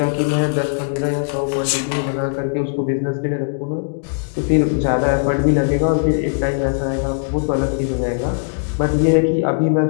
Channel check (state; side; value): silent; right; digital silence